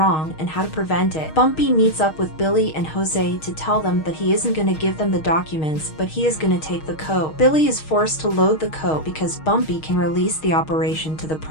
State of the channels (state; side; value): late; right; 6.4 ms